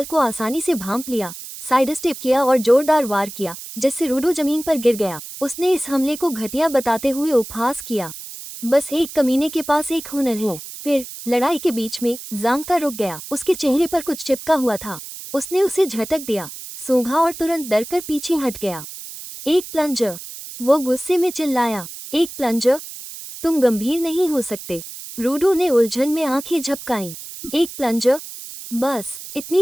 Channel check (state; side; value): noise; right; hiss, 12 dB below the sound